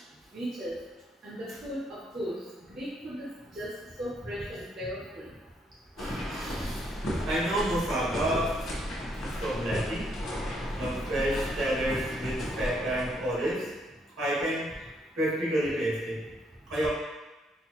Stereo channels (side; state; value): both; normal; correlation 0.72